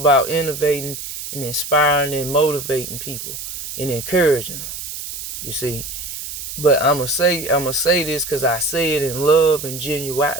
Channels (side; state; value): right; noise; hiss, 8 dB below the sound